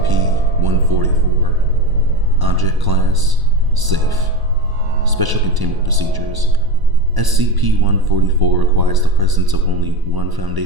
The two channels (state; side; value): late; left; 1.0 ms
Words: Object Class Safe. Special Containment Procedures. SCP-144 requires the presence of only one